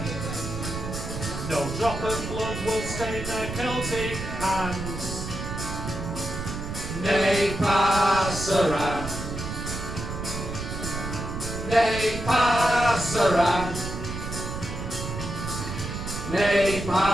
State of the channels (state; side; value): noise; right; rumble, 6 dB below the sound